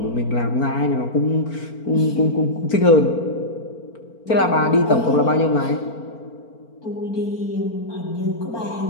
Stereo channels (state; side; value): late; right; 4.4 ms